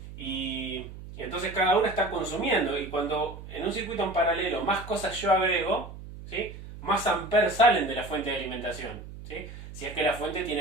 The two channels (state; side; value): noise; right; hum, 13 dB below the sound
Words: y entonces cada una está consumiendo. Y cuando en un circuito en paralelo más cosas yo agrego, ¿sí? Más amperes salen de la fuente de alimentación, ¿sí? Si es que la fuente